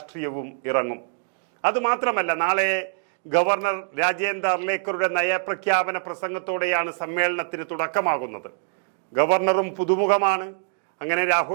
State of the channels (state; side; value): silent; left; digital silence